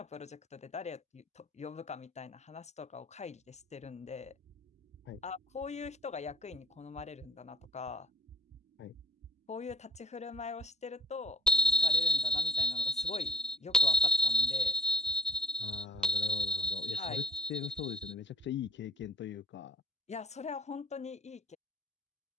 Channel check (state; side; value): normal; both; correlation 0.61